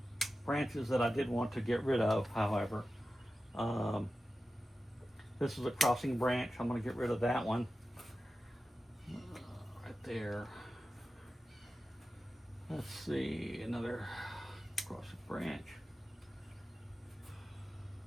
branches that I did want to get rid of, however. This is a crossing branch. I'm going to get rid of that one. Right there. Let's see, another crossing branch.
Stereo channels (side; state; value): both; normal; correlation 0.93